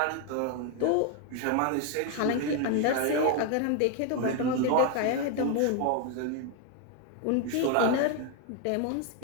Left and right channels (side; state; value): both; different; correlation 0.01